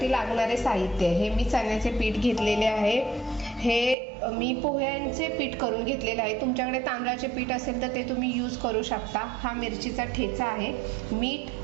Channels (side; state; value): left; drops out; at 4.0 s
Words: लागणारे साहित्य हे मी चण्याचे पीठ घेतलेले आहे, हे मी पोह्यांचे पीठ करून घेतलेले आहे। तुमच्याकडे तांदळाचे पीठ असेल तर ते तुम्ही यूज करू शकता। हा मिरचीचा ठेचा आहे, मीठ,